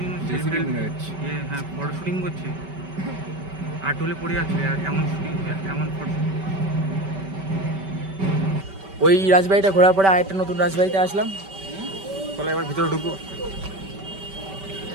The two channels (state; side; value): late; left; 5.2 ms